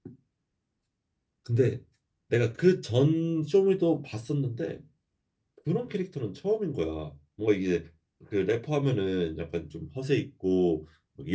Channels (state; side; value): identical; both; correlation 1.00